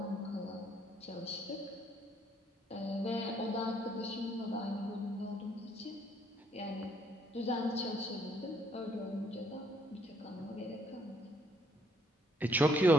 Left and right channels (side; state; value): both; normal; correlation 0.68